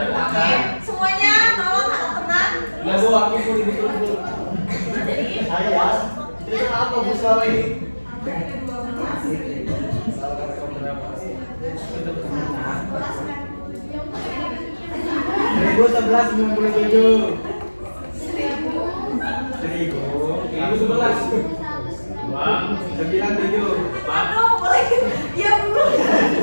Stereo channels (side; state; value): both; inverted; correlation -1.00